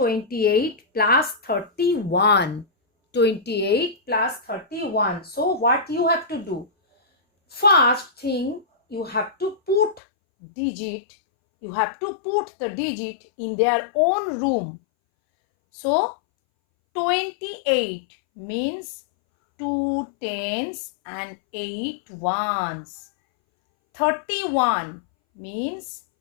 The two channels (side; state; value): right; drops out; at 10.0 s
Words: plus 31. 28 plus 31. So what you have to do? First thing, you have to put digit, you have to put the digit in their own room. So 28 means 2 tens and 8 ones. 31 means